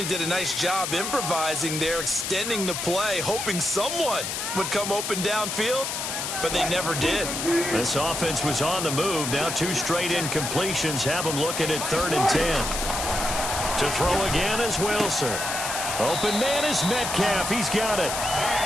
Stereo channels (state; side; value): noise; left; hiss, 3 dB below the sound